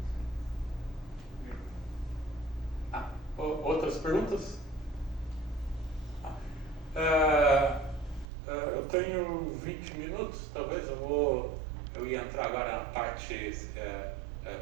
Outras perguntas? Eu tenho 20 minutos, talvez eu ia entrar agora na parte,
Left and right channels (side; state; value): left; drops out; at 8.2 s